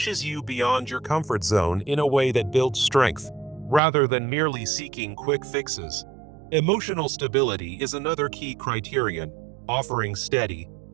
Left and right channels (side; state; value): left; drops out; at 3.8 s